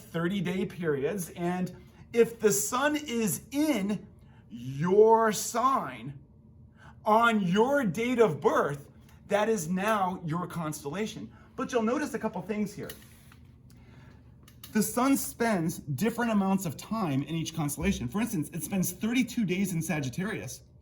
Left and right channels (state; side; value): identical; both; correlation 1.00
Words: periods. And if the sun is in your sign on your date of birth, that is now your constellation. But you'll notice a couple things here. The sun spends different amounts of time in each constellation. For instance, it spends 32 days in Sagittarius,